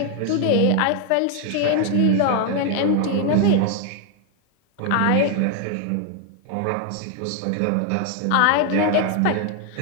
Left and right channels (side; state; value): both; different; correlation 0.01